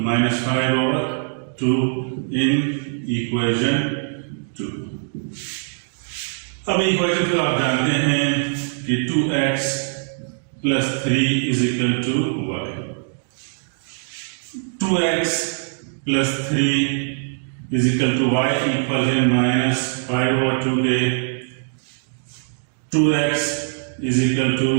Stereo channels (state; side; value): silent; left; digital silence